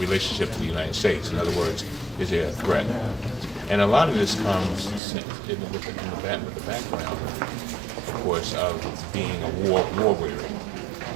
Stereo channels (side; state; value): left; drops out; at 5.0 s